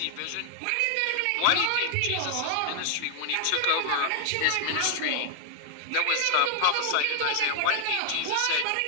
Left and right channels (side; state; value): both; different; correlation 0.00